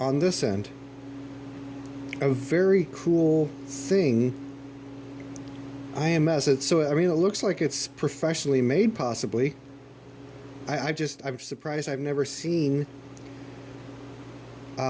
this end. A very cool thing. IMS. I mean, it looks like it's professionally made, possibly. I'm surprised I've never seen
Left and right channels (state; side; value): identical; both; correlation 1.00